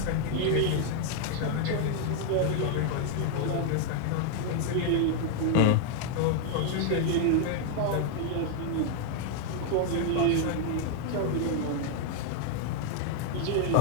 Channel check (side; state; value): both; different; correlation 0.00